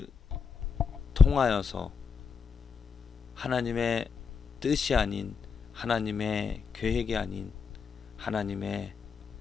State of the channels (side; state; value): right; quieter; 5.8 dB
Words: 통하여서 하나님의 뜻이 아닌, 하나님의 계획이 아닌, 하나님의